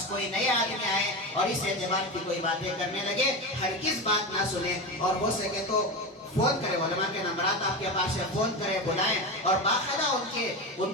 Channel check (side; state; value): both; normal; correlation 0.21